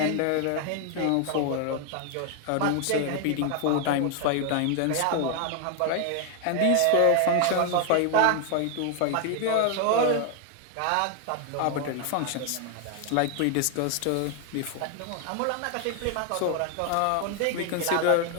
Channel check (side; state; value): both; different; correlation 0.00